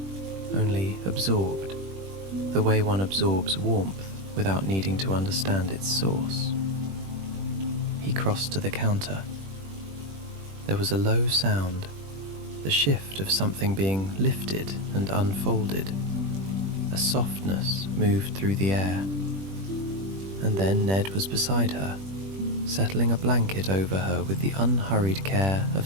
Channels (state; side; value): late; left; 21 ms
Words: only absorbed, the way one absorbs warmth without needing to understand its source. He crossed to the counter. There was a low sound, the shift of something being lifted and unfolded. A softness moved through the air. And then Ned was beside her, settling a blanket over her with the unhurried care of